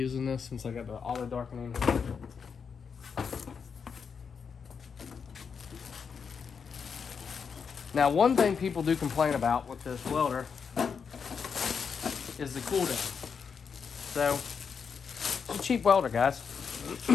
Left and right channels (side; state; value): right; quieter; 6.2 dB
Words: this since I got the auto darkening. Now, one thing people do complain about with this welder is the cool down. So, it's a cheap welder, guys.